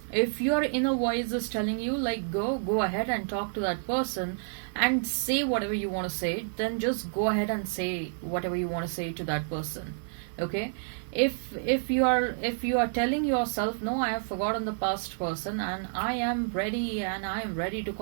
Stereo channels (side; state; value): left; silent; digital silence